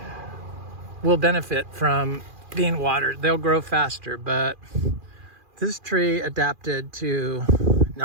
will benefit from being watered. They'll grow faster, but this tree adapted to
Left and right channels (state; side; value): late; left; 2.4 ms